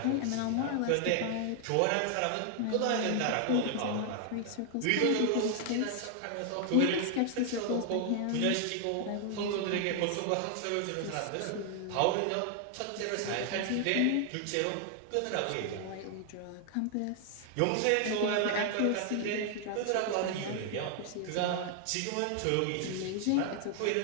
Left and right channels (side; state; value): both; different; correlation 0.00